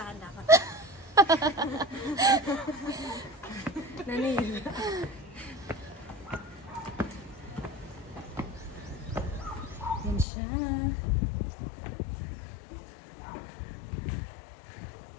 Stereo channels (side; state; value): right; drops out; at 10.2 s